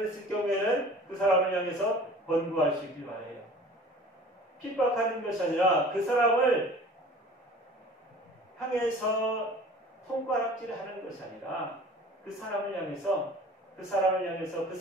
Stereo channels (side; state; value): both; normal; correlation 0.44